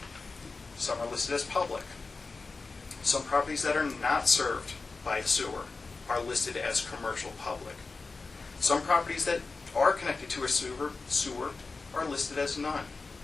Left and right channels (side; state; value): right; quieter; 4.0 dB